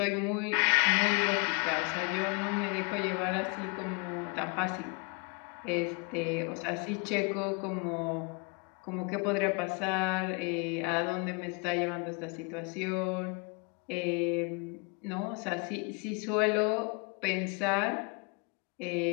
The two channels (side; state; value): right; quieter; 32.3 dB